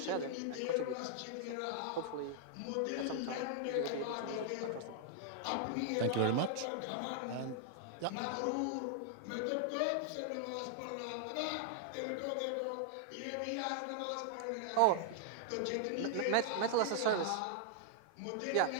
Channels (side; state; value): both; different; correlation -0.01